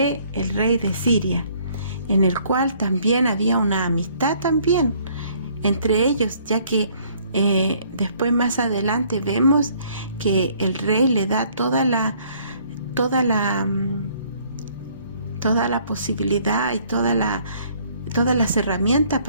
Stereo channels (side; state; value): both; inverted; correlation -0.61